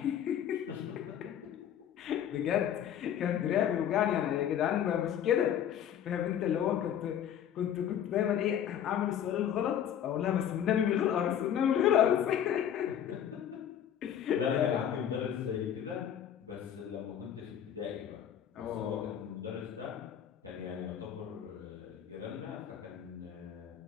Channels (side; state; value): right; quieter; 9.7 dB